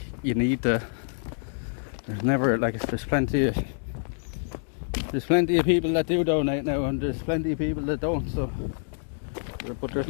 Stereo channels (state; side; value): silent; right; digital silence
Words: you need to. There's never, like, there's plenty of people that do donate now, and there's plenty of people that don't, so. But there's